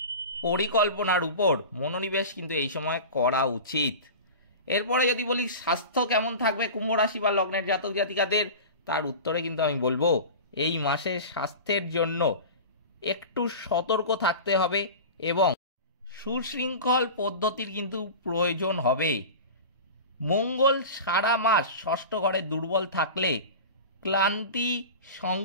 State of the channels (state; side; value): inverted; both; correlation -0.32